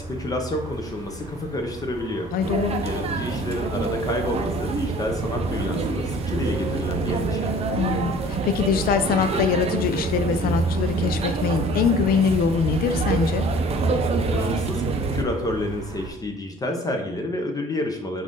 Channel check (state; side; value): normal; both; correlation 0.50